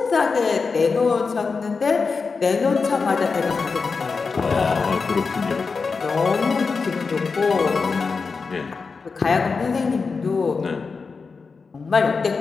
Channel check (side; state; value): right; quieter; 4.7 dB